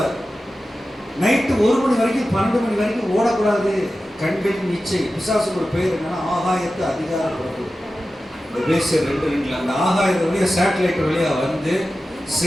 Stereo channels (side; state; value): both; normal; correlation 0.94